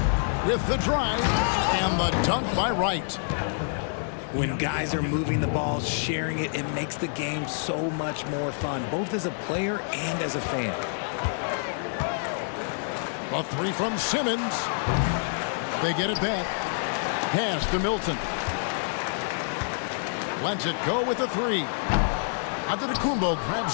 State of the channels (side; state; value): right; silent; digital silence